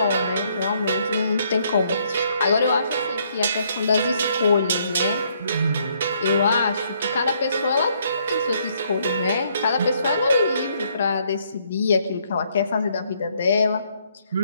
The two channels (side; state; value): both; inverted; correlation -0.69